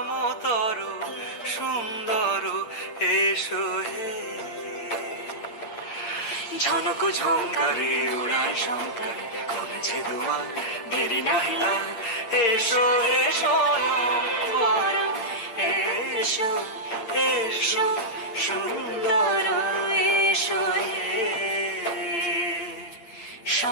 সুন্দর এসো হে। ঝনক ঝঙ্কারে উড়ায় শঙ্কারে খুলেছে দুয়ার, দেরি নাহি আর এসো হে স্বয়ংবর এসো এসো সুন্দর এসো হে।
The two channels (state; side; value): late; right; 8.9 ms